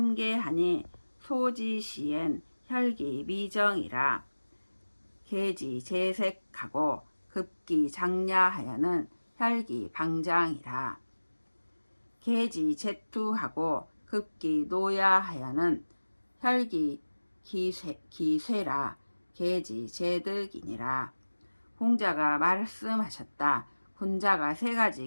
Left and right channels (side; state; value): both; inverted; correlation -1.00